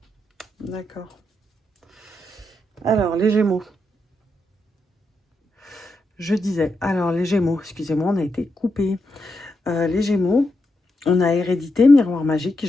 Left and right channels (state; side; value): normal; both; correlation 0.84